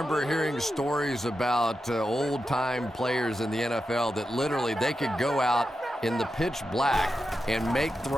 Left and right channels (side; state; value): both; normal; correlation 0.89